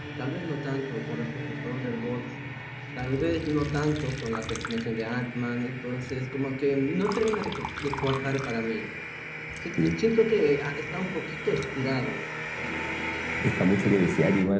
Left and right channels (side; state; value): both; identical; correlation 1.00